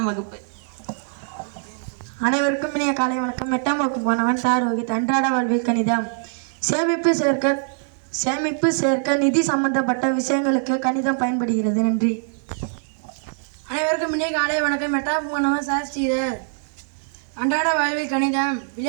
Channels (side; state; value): left; silent; 64 dB below the other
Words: வகுப்பு. அனைவருக்கும் இனிய காலை வணக்கம். 8ஆம் வகுப்பு மாணவன் ரோஹித். அன்றாட வாழ்வில் கணிதம். சேமிப்பு சேர்க்க நிதி சம்பந்தப்பட்ட விஷயங்களுக்கு கணிதம் பயன்படுகிறது. நன்றி. அனைவருக்கும் இனிய காலை வணக்கம். 8ஆம் மாணவன் ஸ்ரீதர். அன்றாட வாழ்வில் கணிதம்.